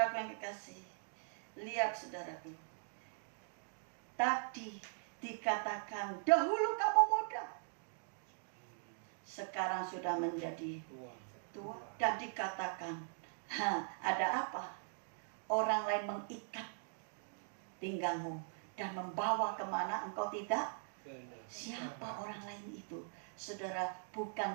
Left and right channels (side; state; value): left; silent; digital silence